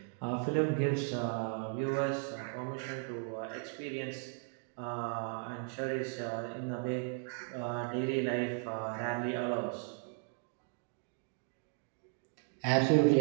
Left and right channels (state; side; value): silent; left; 54 dB below the other